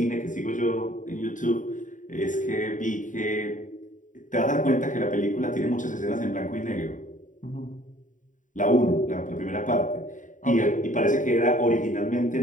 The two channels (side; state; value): right; late; 0.37 ms